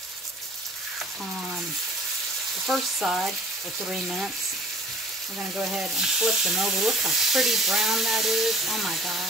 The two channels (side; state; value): both; normal; correlation 0.50